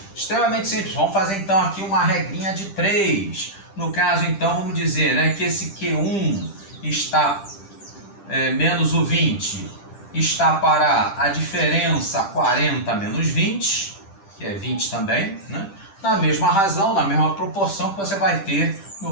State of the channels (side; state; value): right; late; 10 ms